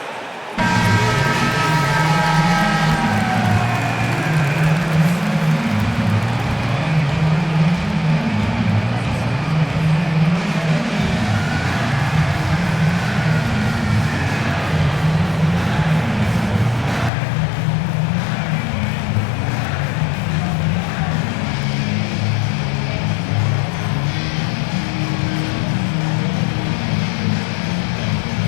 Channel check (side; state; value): right; drops out; at 17.1 s